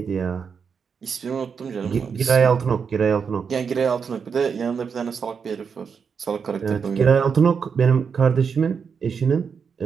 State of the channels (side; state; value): left; quieter; 6.2 dB